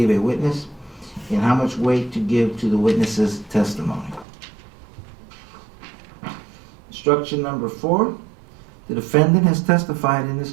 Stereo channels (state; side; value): drops out; left; at 4.2 s